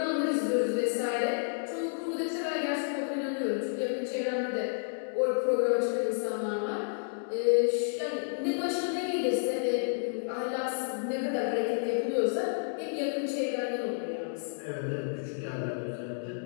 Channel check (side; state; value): right; silent; 57 dB below the other